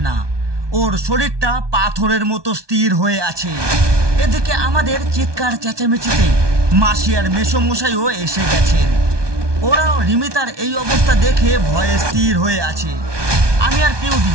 না। ওর শরীরটা পাথরের মতো স্থির হয়ে আছে। এদিকে আমাদের চিৎকার চেঁচামেচিতে মাসি আর মেসোমশাইও এসে গেছেন। ওরাও রিমিতার এই অবস্থা দেখে ভয়ে স্থির হয়ে আছে। আমি আর পেউদি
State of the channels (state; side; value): late; left; 1.2 ms